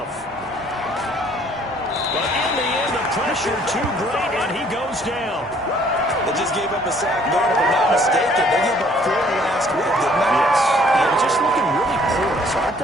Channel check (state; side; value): normal; both; correlation 0.60